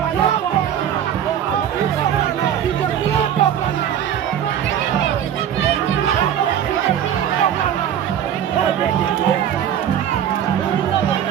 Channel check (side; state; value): left; quieter; 9.8 dB